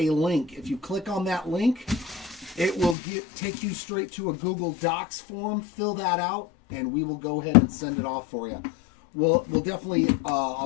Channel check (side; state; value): right; drops out; at 3.0 s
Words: link. If you click on that link, it will take you straight to a Google Docs form. Fill that out, and we will go ahead and send it off for you. We'll definitely